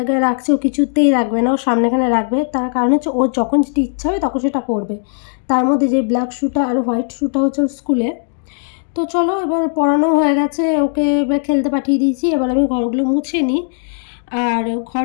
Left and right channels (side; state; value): right; silent; 68 dB below the other